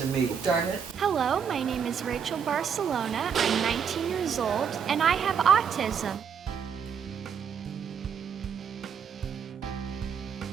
to me. Darn it. Hello, my name is Rachel Barcellona. I'm 19 years old and I have autism.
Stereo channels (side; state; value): left; quieter; 7.2 dB